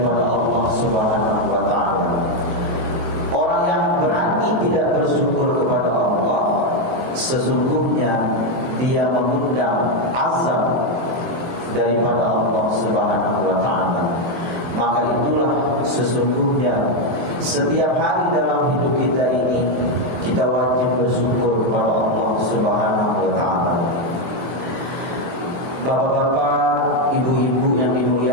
Allah Subhanahu wa ta'ala. Orang yang berani tidak bersyukur kepada Allah, sesungguhnya dia mengundang azab daripada Allah Subhanahu wa ta'ala. Maka itulah sesungguhnya setiap hari dalam hidup kita ini kita wajib bersyukur kepada Allah Subhanahu wa ta'ala. Bapak-bapak, ibu-ibu yang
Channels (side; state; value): left; late; 24 ms